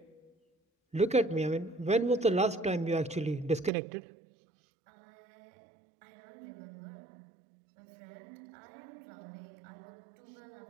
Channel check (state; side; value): drops out; left; at 3.7 s